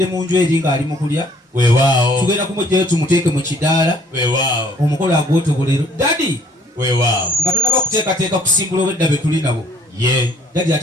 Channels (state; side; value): normal; both; correlation 0.59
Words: mu nju eri ng'ali mu kulya weewaawo tugenda kumugjayo tumuteeke mu kidaala weewaawo omukolo agwotogolero dadi weewaawo nga tonaba kuteekateeka kusimbula obwedda be tuli nabo ye dadi